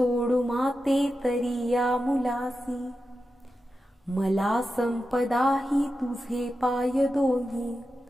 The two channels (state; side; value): normal; both; correlation 0.91